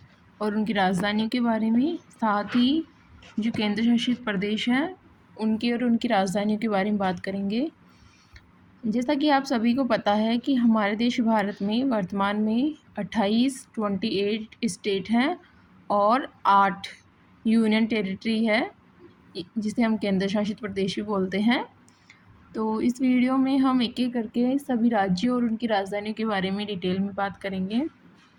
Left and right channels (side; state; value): both; identical; correlation 1.00